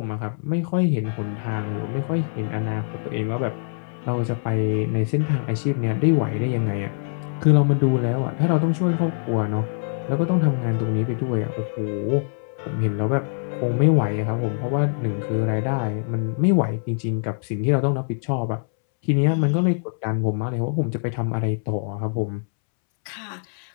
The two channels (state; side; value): silent; right; 63 dB below the other